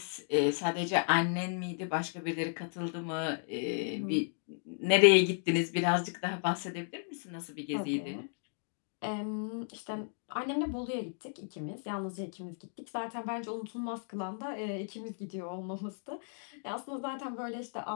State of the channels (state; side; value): silent; right; digital silence